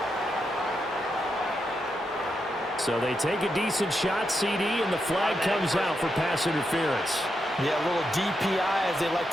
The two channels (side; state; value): both; normal; correlation 0.84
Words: So they take a decent shot, CD, and the flag comes out for pass interference. Yeah, a little DPI, as they like